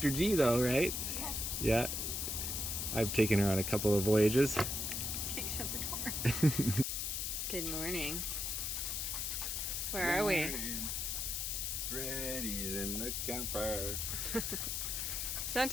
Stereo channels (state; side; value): noise; left; hiss, 1 dB below the sound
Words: G though, right? Yeah. Yeah. I've taken her on a couple of voyages. Okay, shut the door. Good morning. Where are we? Freddy's in the camper.